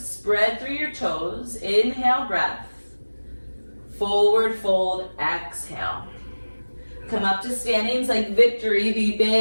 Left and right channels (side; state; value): both; inverted; correlation -1.00